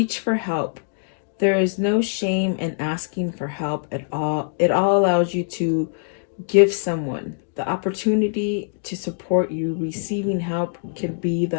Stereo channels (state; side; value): silent; right; digital silence